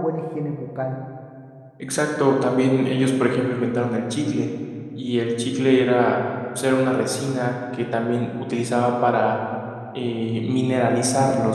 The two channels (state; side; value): identical; both; correlation 1.00